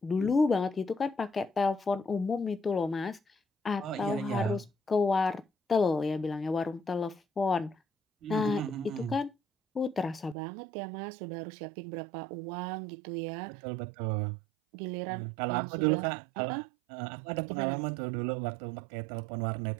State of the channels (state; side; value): drops out; left; at 10.4 s